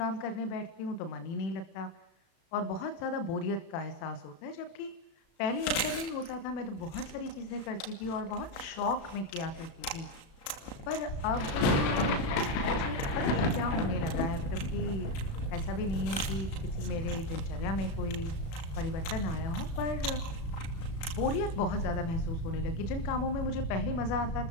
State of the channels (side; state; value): right; late; 36 ms